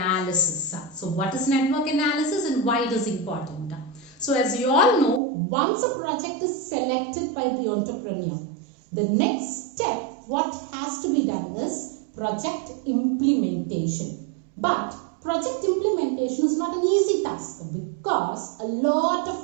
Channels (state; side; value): drops out; left; at 5.2 s